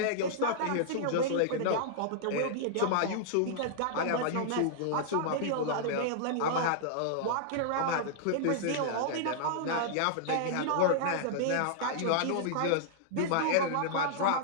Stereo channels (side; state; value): both; different; correlation -0.01